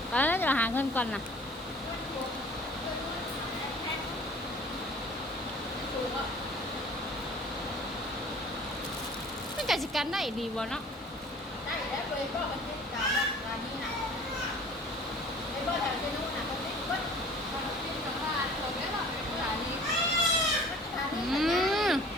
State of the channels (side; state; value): both; normal; correlation 0.48